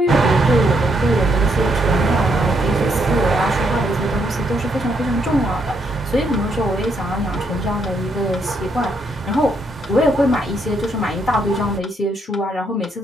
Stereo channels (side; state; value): both; normal; correlation 0.75